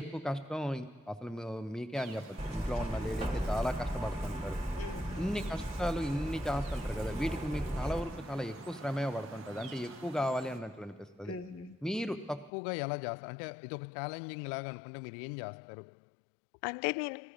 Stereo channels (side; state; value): right; drops out; at 12.5 s